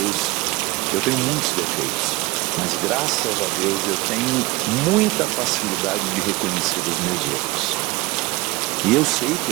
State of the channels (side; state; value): left; quieter; 22.1 dB